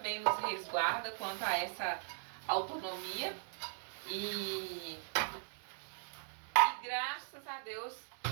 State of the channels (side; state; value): left; silent; digital silence